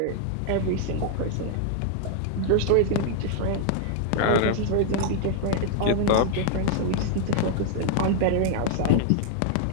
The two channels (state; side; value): different; both; correlation 0.00